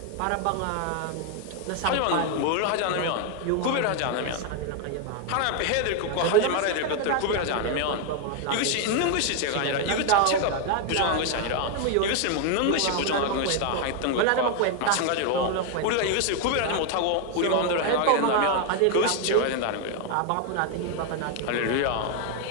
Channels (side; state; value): both; different; correlation 0.01